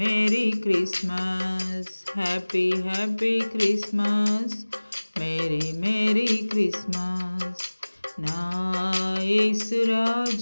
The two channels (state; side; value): inverted; both; correlation -1.00